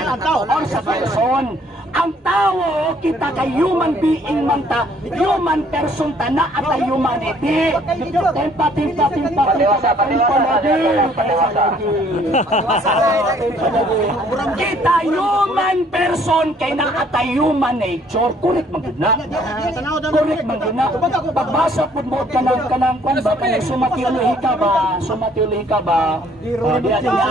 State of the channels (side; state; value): both; normal; correlation 0.62